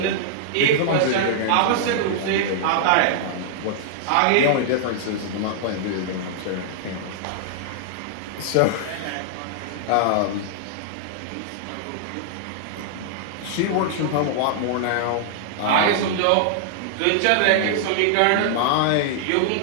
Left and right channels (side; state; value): both; different; correlation -0.01